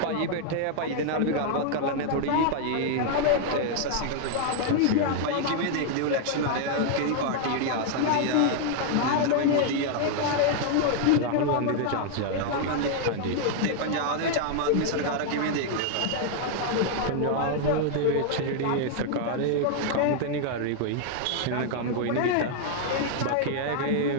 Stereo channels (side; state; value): both; different; correlation 0.00